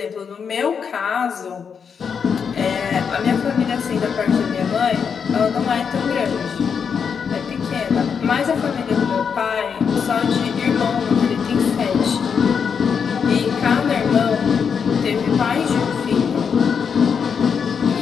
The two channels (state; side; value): quieter; right; 6.6 dB